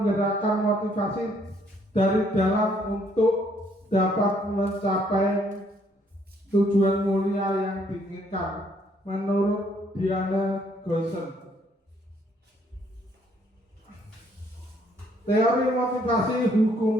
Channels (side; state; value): both; normal; correlation 0.67